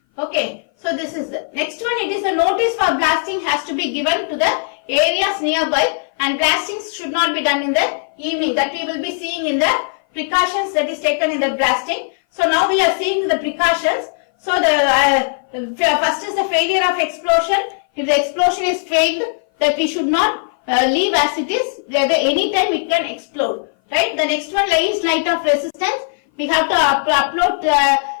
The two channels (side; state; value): right; silent; 58 dB below the other